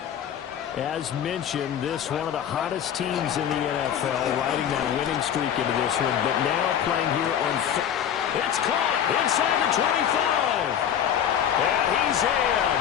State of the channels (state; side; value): quieter; right; 9.3 dB